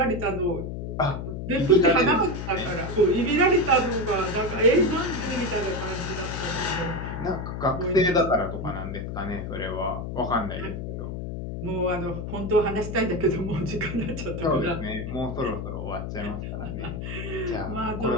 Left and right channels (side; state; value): left; noise; hum, 5 dB below the sound